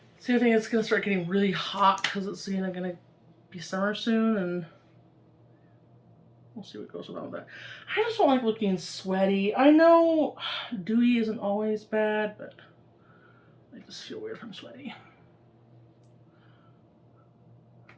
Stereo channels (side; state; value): both; identical; correlation 1.00